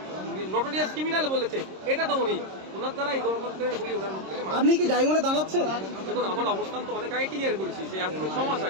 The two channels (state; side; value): late; left; 26 ms